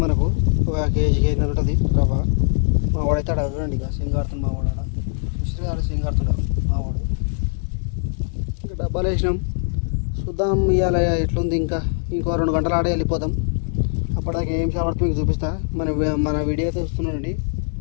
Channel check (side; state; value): right; silent; digital silence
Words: మనకు, ఒక కేజీకి 500 ఉంటుంది రవ్వ. మా వాడైతే అక్కడ చూడండి, ఇక సింగ్ ఆడుతుంది మా వాడు. ఆడ సింగ్ ఆడుతున్నాడు మా వాడు. ఇంకా డబ్బాలు వేసినాం, చూద్దాం ఇవాళ ఎట్లుంది. ఇంకో 2 గంటలు ఆడే వెళ్ళిపోదాం. అప్పటిదాకా ఏం చేపడుతుంది మీకు చూపిస్తా. మన వీడియో అయితే చూస్తున్నానండి.